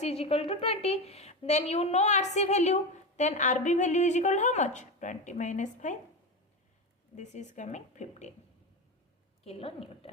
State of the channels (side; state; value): both; normal; correlation 0.18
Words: is equal to 20. Then you know RC value. Then RB value is equal to how much? 20 minus 5. This is coming 15